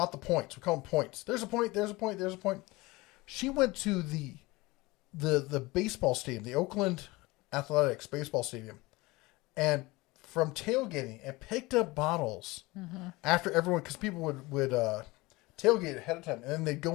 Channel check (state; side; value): quieter; right; 22.0 dB